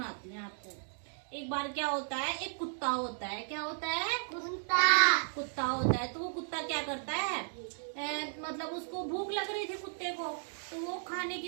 हूँ आपको। एक बार क्या होता है, एक कुत्ता होता है। क्या होता है? कुत्ता होता है। तो वो कुत्ता क्या करता है, मतलब उसको भूख लग रही थी कुत्ते को, तो वो खाने की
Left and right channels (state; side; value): silent; left; digital silence